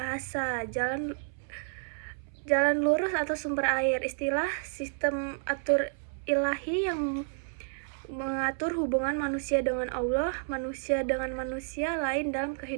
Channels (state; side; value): silent; left; 57 dB below the other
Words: jalan lurus atau sumber air, istilah sistem atur ilahi yang mengatur hubungan manusia dengan Allah, manusia dengan manusia lain dalam